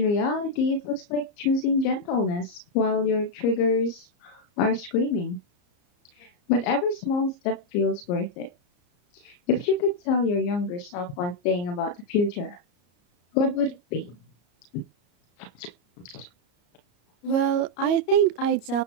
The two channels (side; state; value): right; late; 34 ms